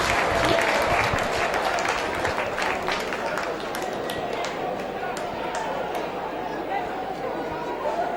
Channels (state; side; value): identical; both; correlation 1.00